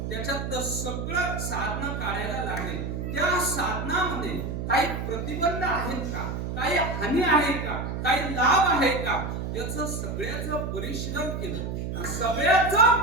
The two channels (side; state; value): right; noise; hum, 4 dB below the sound